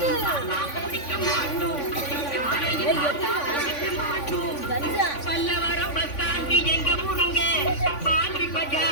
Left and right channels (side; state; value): right; late; 3.5 ms